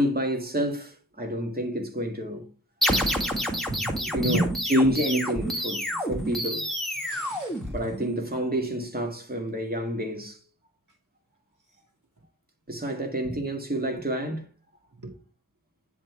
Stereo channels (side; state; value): both; normal; correlation 0.46